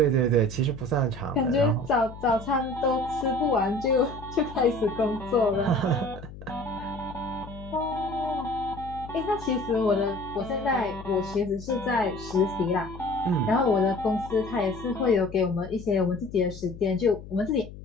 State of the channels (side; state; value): left; noise; hum, 14 dB below the sound